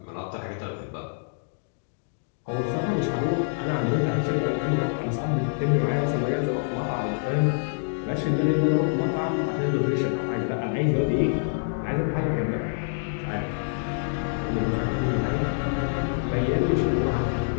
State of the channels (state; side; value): silent; right; digital silence